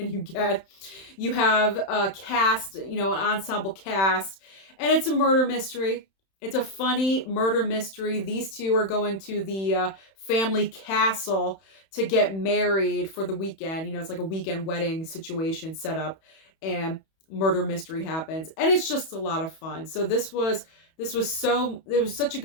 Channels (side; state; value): right; late; 31 ms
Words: you get? You have a cast, an ensemble cast, and it's a murder mystery. It's a funny murder mystery. These two are going to the family castle to get married for the weekend. It's like a weekend wedding situation set up, and murder mystery happens, and it's just a lot of fun. So it was such a